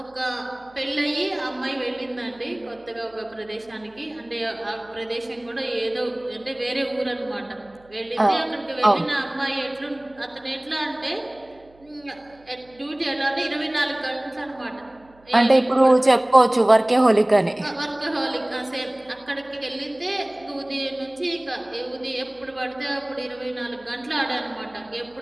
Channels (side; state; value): right; noise; hum, 29 dB below the sound